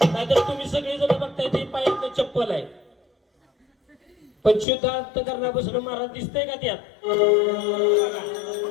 नाहीतर तुम्ही सगळे जण बघताय ते पायात चप्पल आहे पण शुद्ध अंतकरणापासून महाराज दिसतंय का त्यात?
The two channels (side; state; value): right; drops out; at 4.7 s